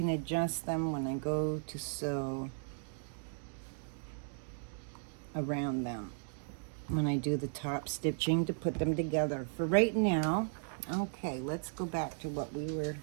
adjust them when I go to sew around them when I do the top stitching to put them together. For right now, okay, let's go back to what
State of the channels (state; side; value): silent; left; digital silence